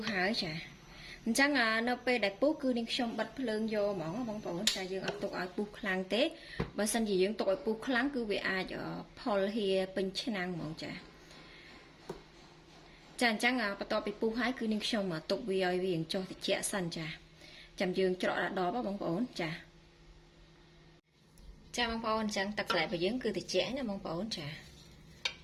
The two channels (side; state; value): both; identical; correlation 1.00